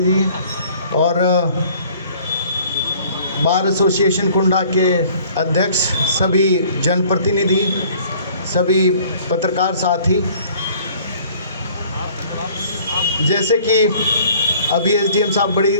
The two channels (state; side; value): inverted; both; correlation -0.54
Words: जी और बार एसोसिएशन कुंडा के अध्यक्ष, सभी जनप्रतिनिधि, सभी पत्रकार साथी, जैसे कि अभी एसडीएम साहब बड़ी